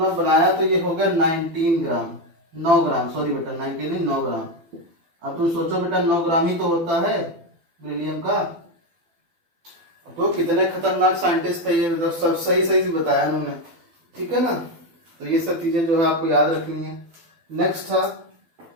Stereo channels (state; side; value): late; left; 12 ms